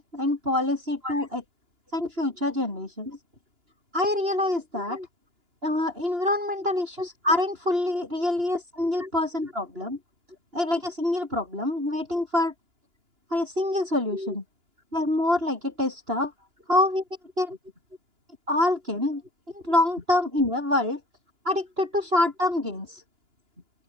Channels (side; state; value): left; late; 2.9 ms